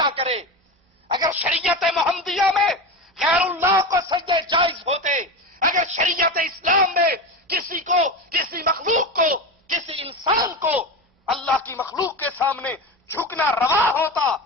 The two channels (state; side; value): normal; both; correlation 0.23